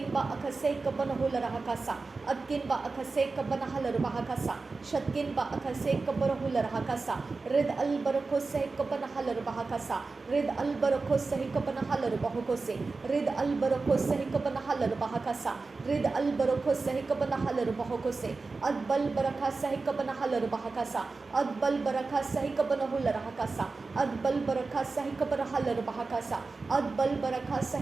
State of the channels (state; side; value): quieter; left; 4.0 dB